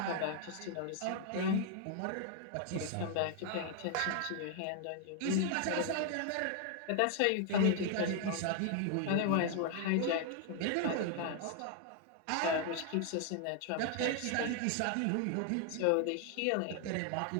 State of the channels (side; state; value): both; different; correlation 0.00